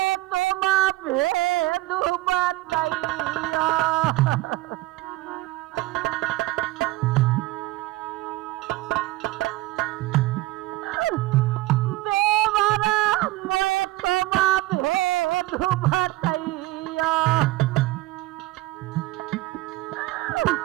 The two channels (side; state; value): left; quieter; 18.5 dB